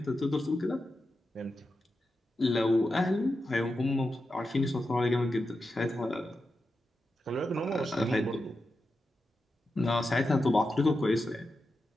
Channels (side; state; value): both; normal; correlation 0.89